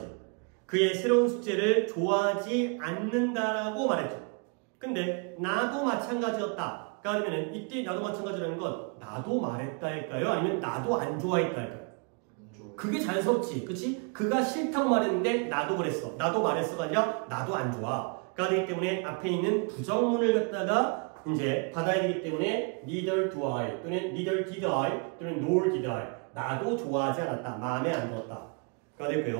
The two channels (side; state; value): left; quieter; 35.5 dB